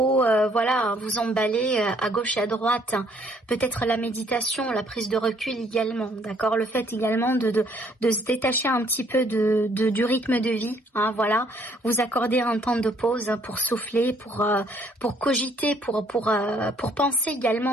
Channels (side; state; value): both; normal; correlation 0.64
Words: voilà, vous emballer à gauche et à droite. Peut-être la méditation, la prise de recul également, d'accord. Le fait également de se détacher un petit peu du rythme de vie, hein, voilà. Vous accorder un temps de pause pour souffler, pour cogiter, pour penser